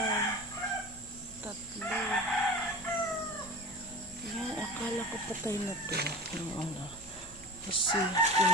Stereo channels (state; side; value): normal; both; correlation 0.34